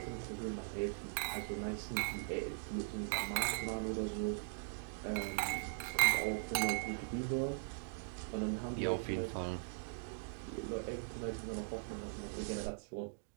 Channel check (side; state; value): left; silent; digital silence